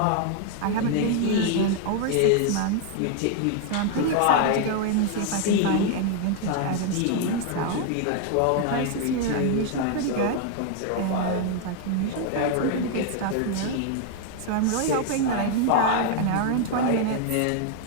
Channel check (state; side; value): different; both; correlation 0.00